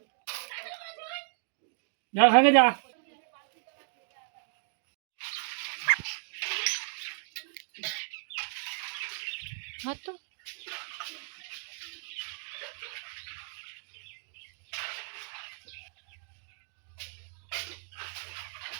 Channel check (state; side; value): silent; left; digital silence